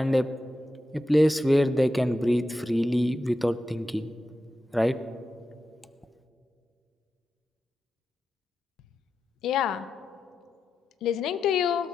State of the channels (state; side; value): normal; both; correlation 0.89